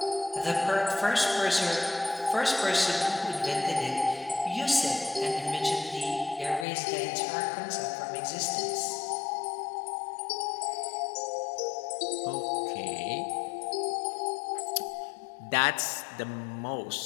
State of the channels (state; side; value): drops out; right; at 6.7 s